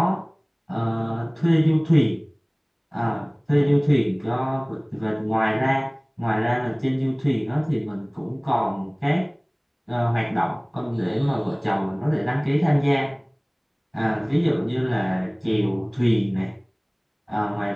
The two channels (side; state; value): both; identical; correlation 1.00